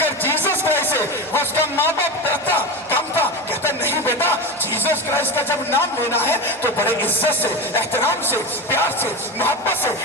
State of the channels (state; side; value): noise; right; hum, 28 dB below the sound